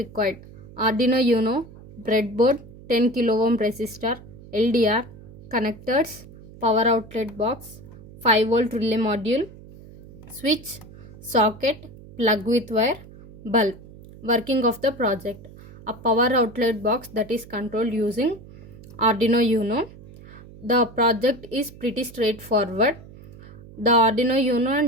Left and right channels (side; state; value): right; noise; hum, 19 dB below the sound